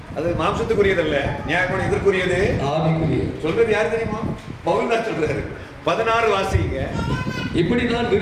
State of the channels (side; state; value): both; identical; correlation 1.00